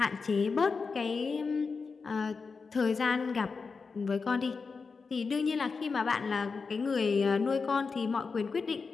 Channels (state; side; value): quieter; right; 4.8 dB